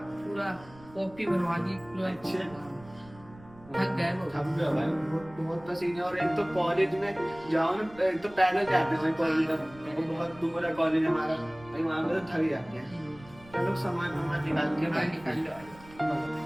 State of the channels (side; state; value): right; noise; rumble, 22 dB below the sound